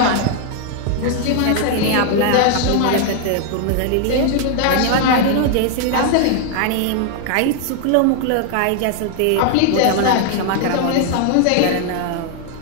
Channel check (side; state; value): both; different; correlation 0.00